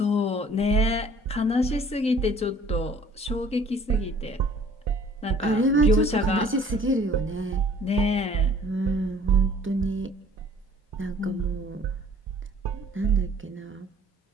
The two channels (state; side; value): normal; both; correlation 0.53